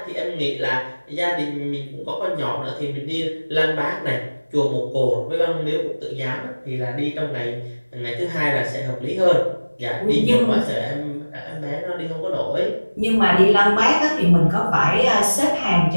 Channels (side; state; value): both; inverted; correlation -1.00